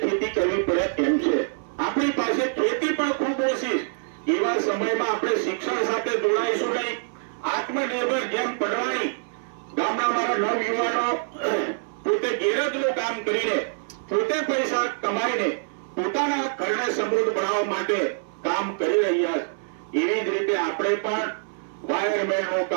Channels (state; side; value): silent; left; 62 dB below the other